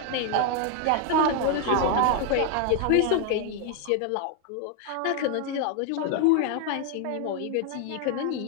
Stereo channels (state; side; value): different; both; correlation 0.01